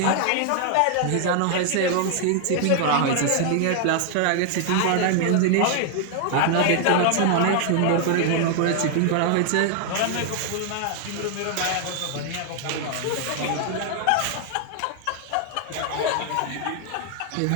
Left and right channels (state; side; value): different; both; correlation 0.00